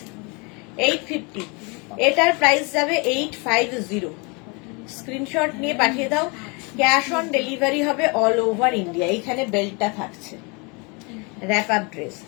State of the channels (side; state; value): right; quieter; 30.5 dB